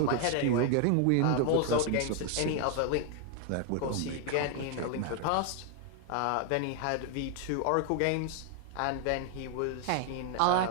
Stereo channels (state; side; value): different; both; correlation 0.00